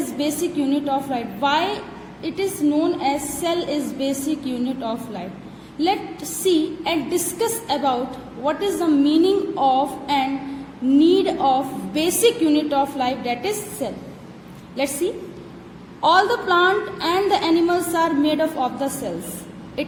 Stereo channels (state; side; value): identical; both; correlation 1.00